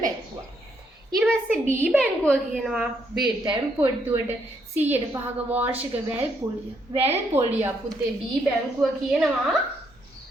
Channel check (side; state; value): both; normal; correlation 0.74